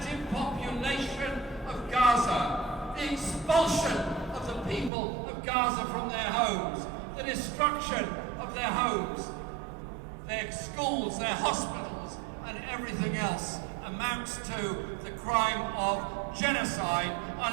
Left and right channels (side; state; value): left; drops out; at 4.9 s